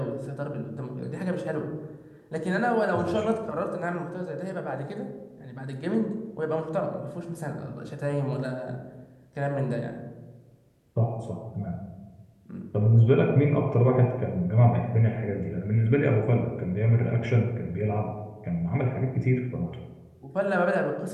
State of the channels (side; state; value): both; identical; correlation 1.00